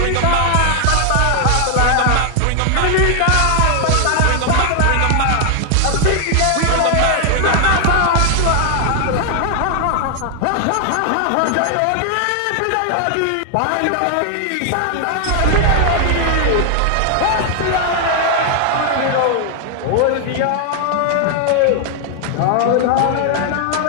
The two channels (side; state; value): both; different; correlation 0.00